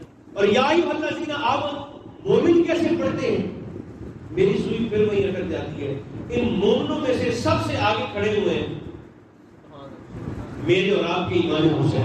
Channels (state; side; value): identical; both; correlation 1.00